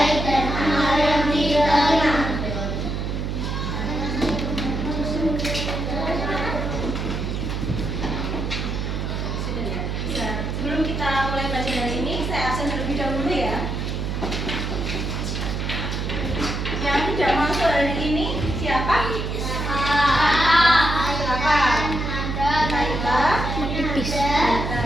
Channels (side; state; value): right; noise; hum, 2 dB below the sound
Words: Sebelum kita mulai belajar hari ini, saya absen terlebih dahulu ya. Yang tidak masuk hari ini siapa? Silakan. Naila, Pipis.